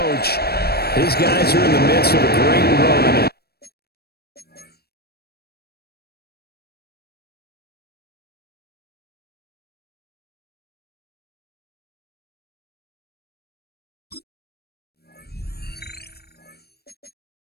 His guys are in the midst of a great run.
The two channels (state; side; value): late; right; 0.46 ms